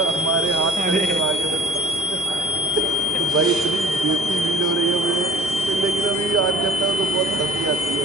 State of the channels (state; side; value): normal; both; correlation 0.49